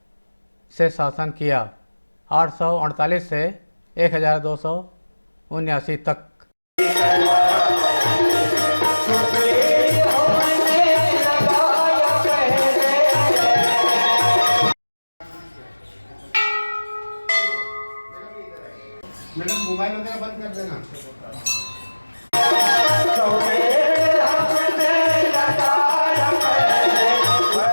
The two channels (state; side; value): inverted; both; correlation -1.00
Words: से शासन किया। 848 से 1279 तक। मैडम मोबाइल वगैरह बंद कर देना।